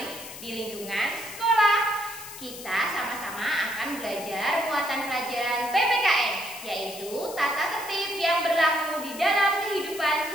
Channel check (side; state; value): left; noise; hiss, 13 dB below the sound